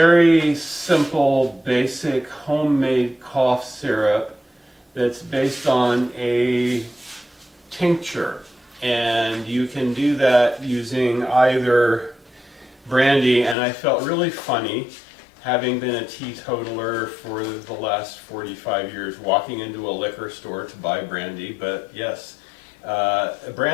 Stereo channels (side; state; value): right; drops out; at 13.6 s